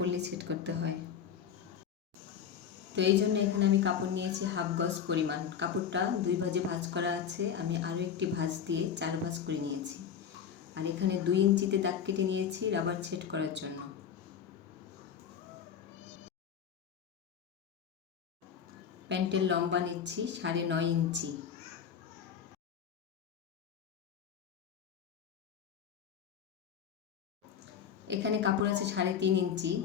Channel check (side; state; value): right; quieter; 8.0 dB